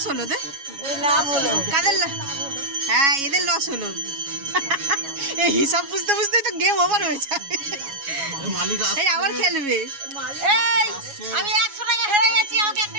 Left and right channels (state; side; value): late; left; 7.2 ms